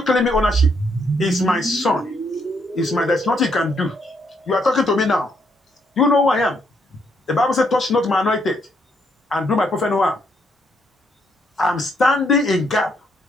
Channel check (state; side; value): normal; both; correlation 0.74